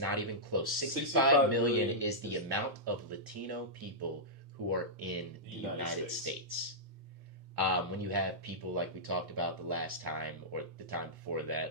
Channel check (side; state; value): both; normal; correlation -0.12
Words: even close. 65 million is the amount of Latino people who are in the United States. When you have people like we talked about the last time, or the time before